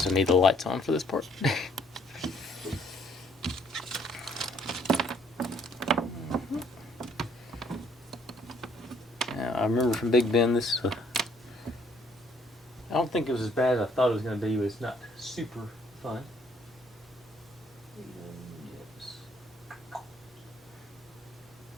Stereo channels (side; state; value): both; normal; correlation 0.64